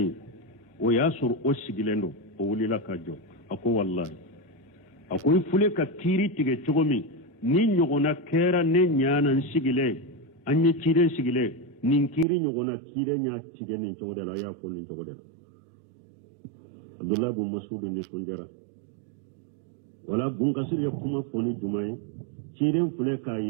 o yasur o sigilendo o wulila kajo ako wallahi akoy fule ka kiri tige chogomi ni nyogona kera ne nyana sigile anye kire sigile nin kiri nyogona kire nya tige nin chogodela ya fo nin chogodela Abdullah ibn Mas'ud ni sonjara wala bun kasir ya kuma foni jumai kire fule ka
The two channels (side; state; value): left; drops out; at 12.2 s